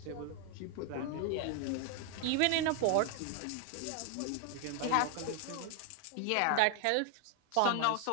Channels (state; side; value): different; both; correlation 0.00